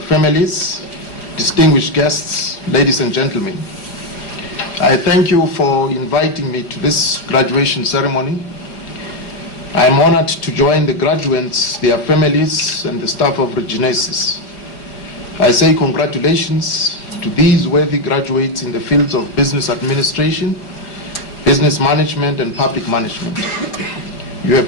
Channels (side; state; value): right; late; 4.9 ms